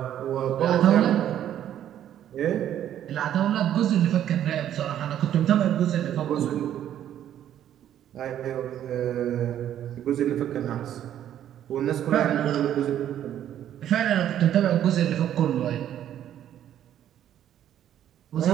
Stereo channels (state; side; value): quieter; left; 10.9 dB